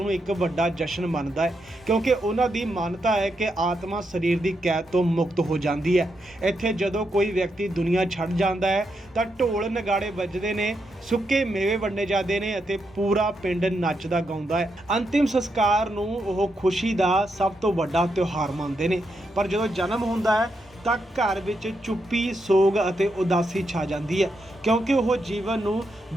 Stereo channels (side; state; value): both; normal; correlation 0.82